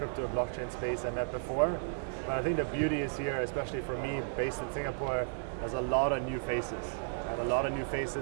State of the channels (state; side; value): silent; left; digital silence